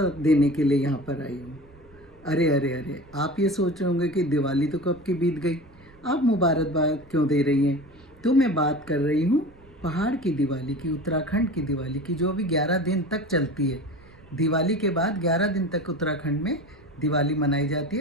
देने के लिए यहाँ पर आई हूँ। अरे अरे अरे, आप ये सोच रहे होंगे कि दिवाली तो कब की बीत गई, आप मुबारकबाद क्यों दे रही हैं। तो मैं बात कर रही हूँ पहाड़ की दिवाली की, उत्तराखंड की दिवाली की, जो अभी 11 दिन तक चलती है। दिवाली के बाद 11 दिन तक उत्तराखंड में दिवाली मनाई जाती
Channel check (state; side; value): noise; right; rumble, 26 dB below the sound